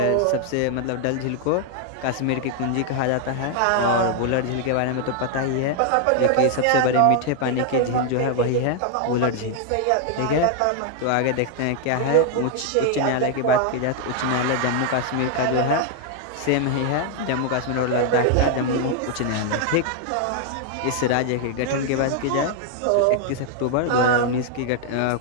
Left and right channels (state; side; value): different; both; correlation 0.00